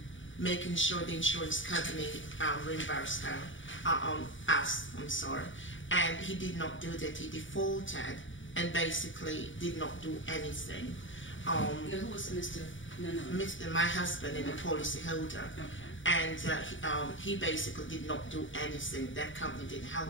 making sure the insurance company reimbursed us. And he did not do that. He defaulted and basically did not do anything. Who was Mr. Nanan? My husband and the policy holder. Okay. And he basically did not do anything. That company didn't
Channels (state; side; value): late; right; 0.56 ms